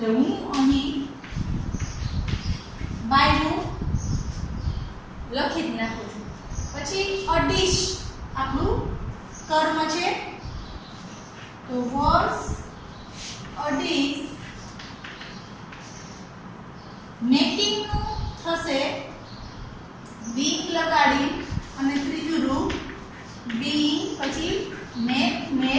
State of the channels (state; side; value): identical; both; correlation 1.00